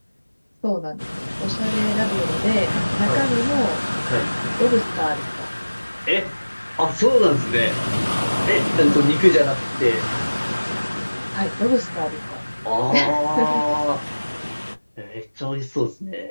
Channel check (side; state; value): both; inverted; correlation -1.00